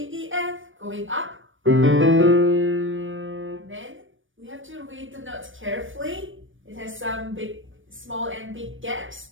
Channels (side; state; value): left; late; 0.57 ms